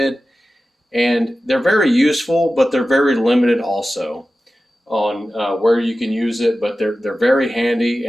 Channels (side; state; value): both; normal; correlation 0.94